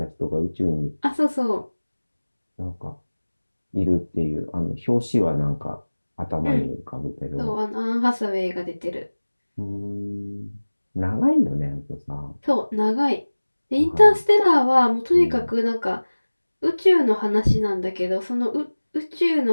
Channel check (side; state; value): both; inverted; correlation -1.00